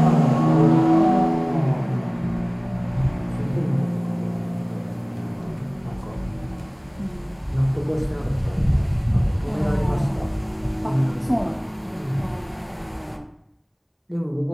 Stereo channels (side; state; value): both; identical; correlation 1.00